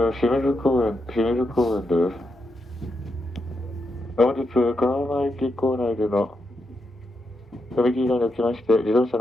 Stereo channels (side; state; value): both; normal; correlation 0.84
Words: 清水公園です。本日、川間駅構内での踏切が起きまして、自動車